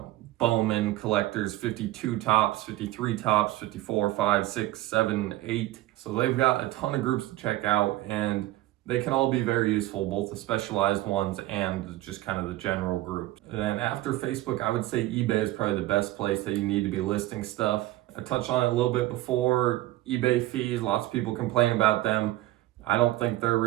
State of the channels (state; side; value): quieter; left; 16.4 dB